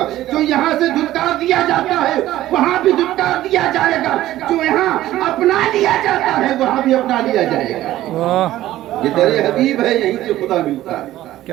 جو یہاں سے دھتکار دیا جاتا ہے وہاں بھی دھتکار دیا جائے گا. جو یہاں اپنا لیا جاتا ہے وہاں بھی اپنا لیا جائے گا. واہ یہ تیرے حبیب ہے یہیں سے خدا ملتا ہے.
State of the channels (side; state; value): left; quieter; 14.6 dB